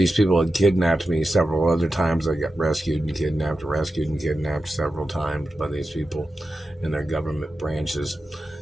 people had kidnapped me several other times. I got rescued and kidnapped several times by these people in their government branches.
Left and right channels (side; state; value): both; normal; correlation 0.91